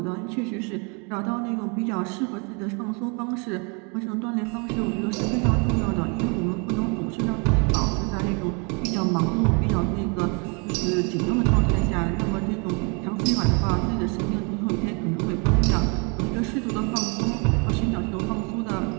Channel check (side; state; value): left; quieter; 33.6 dB